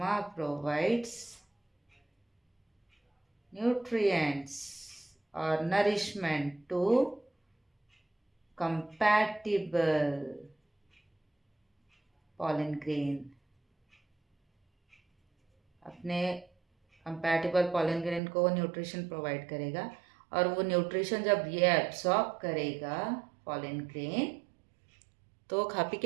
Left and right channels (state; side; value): drops out; left; at 18.2 s